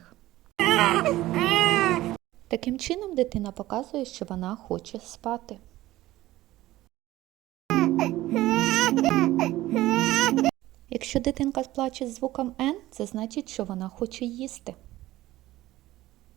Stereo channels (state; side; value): quieter; left; 16.3 dB